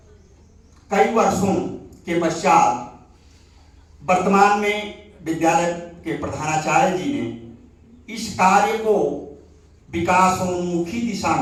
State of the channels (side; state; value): both; identical; correlation 1.00